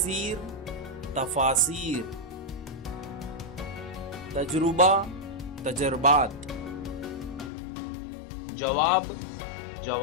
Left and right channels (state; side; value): drops out; right; at 7.5 s